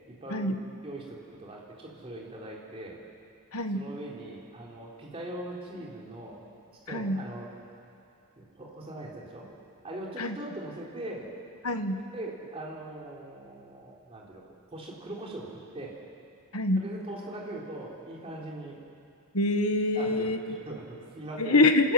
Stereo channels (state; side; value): normal; both; correlation 0.15